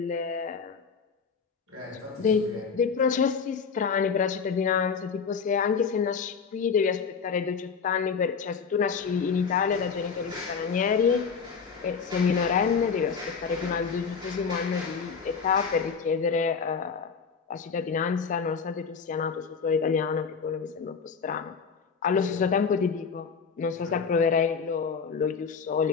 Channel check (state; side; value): quieter; right; 5.8 dB